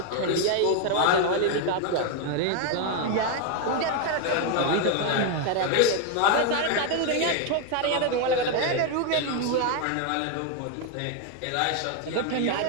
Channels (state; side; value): different; both; correlation 0.01